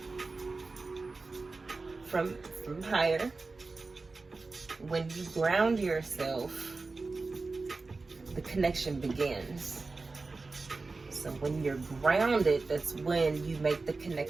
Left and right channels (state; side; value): quieter; left; 3.8 dB